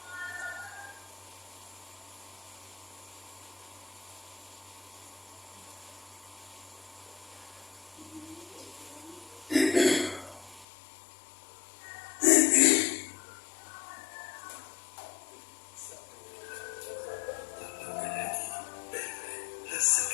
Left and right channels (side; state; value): right; drops out; at 10.7 s